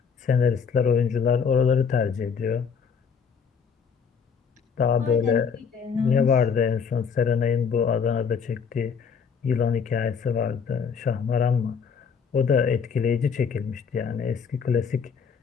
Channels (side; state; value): right; quieter; 6.4 dB